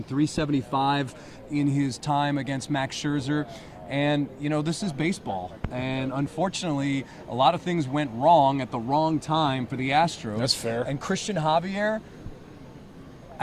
375 in his time against Max Scherzer. And, this is baseball. And unfortunately, a lot of things went wrong at the wrong time for the Astros. That's fair. And Christian Javier,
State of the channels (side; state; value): both; identical; correlation 1.00